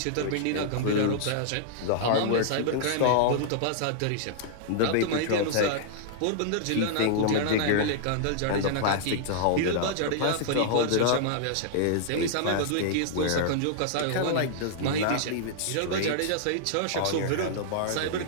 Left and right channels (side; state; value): both; different; correlation -0.01